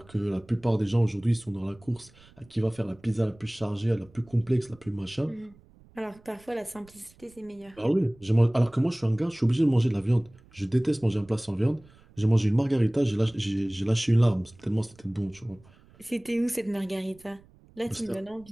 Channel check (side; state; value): right; noise; rumble, 27 dB below the sound